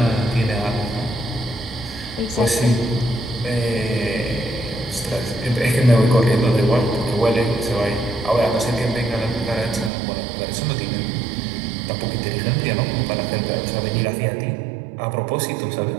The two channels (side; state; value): left; drops out; at 9.9 s